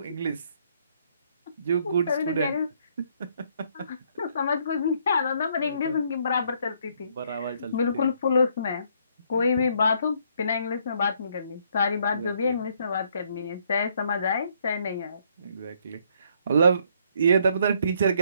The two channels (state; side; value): inverted; both; correlation -0.68